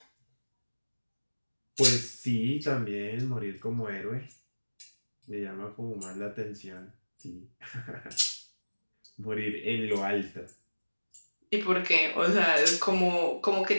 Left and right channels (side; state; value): both; inverted; correlation -1.00